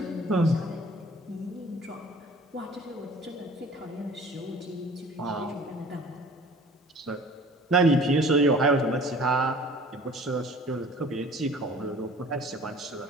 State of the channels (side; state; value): both; normal; correlation 0.48